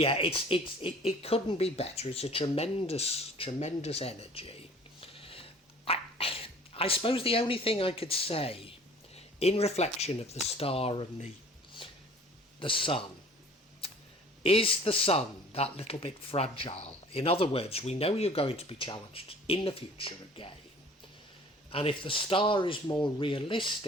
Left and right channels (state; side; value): normal; both; correlation 0.49